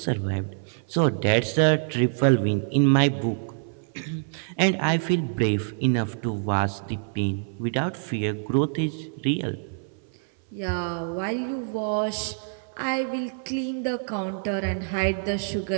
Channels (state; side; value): silent; left; 59 dB below the other